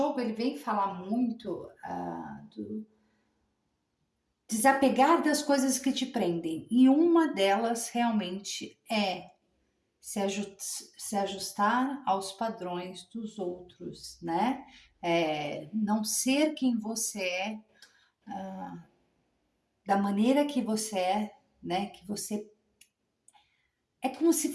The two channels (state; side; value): identical; both; correlation 1.00